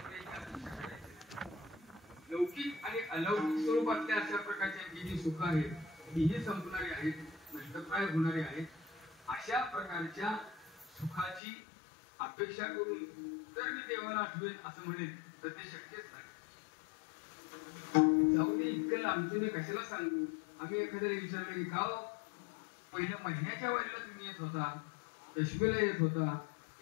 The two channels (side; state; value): right; drops out; at 11.4 s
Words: अपेक्षा करायची नाही. लौकिक आणि अलौकिक स्वरूपातल्या अशा प्रकारच्या जी सुख आहेत तीही संपणारी आहेत, नष्टप्राय होणारी आहेत. अशा प्रकारच्या सुखाची अपेक्षा करून जर मी देवाला आठवेन असं म्हणेन तर ते शक्यच नाही. जाऊ दे, इतकं लांबचं मी कशाला सांगू. आम्ही एखाद्याला विचारलं की का पहिल्या महिन्याच्या वारीला तुम्ही येत होता, दशमीला येत होता,